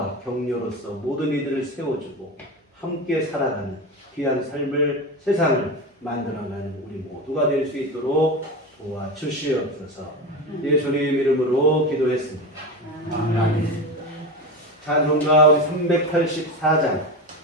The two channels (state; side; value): normal; both; correlation 0.23